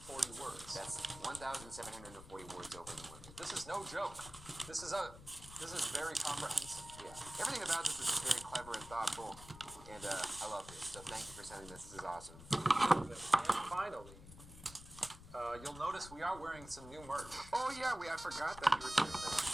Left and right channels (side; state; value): left; noise; rumble, 16 dB below the sound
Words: words. That's 1,740 words over the limit. This is no joke. This is very comprehensive. Yeah, everything about this is just very clever and thoughtful, and I love this. So thank you for sending this. This is awesome. And finally, you'll notice we are wearing some new merch. Oh yeah, I forgot that you were doing